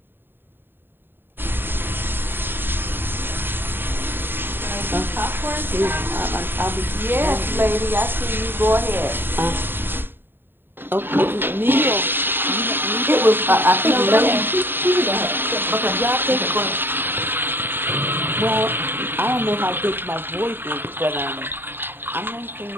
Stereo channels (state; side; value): late; left; 0.098 ms